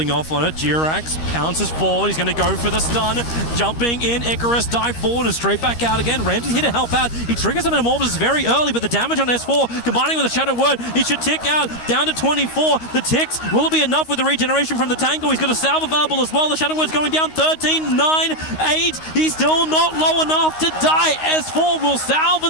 off on it. Jirax pounces forward. He's going to go for the stun. Jumping in. Icarus dive forward and straight back out again. Ramsey's here to help out. He triggers some Metamorphosis very early, but the damage on S4 combining with a Shadow Word, he should tick out down to 24. The ticks, will it be enough with the regeneration from the Tango? He's got a salve available as well. The Shadow Word's going down 13, 9, 8. He's still not low enough to die. S4 will salve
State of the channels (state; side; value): late; right; 13 ms